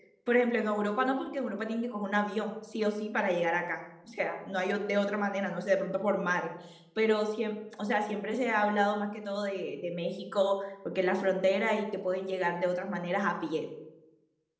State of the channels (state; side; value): identical; both; correlation 1.00